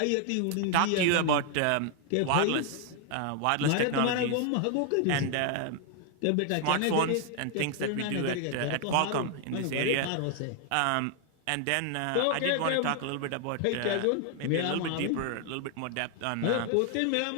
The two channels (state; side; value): different; both; correlation 0.00